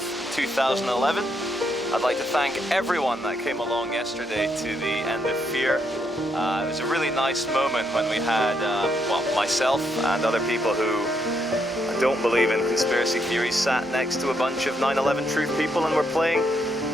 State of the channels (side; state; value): both; normal; correlation 0.76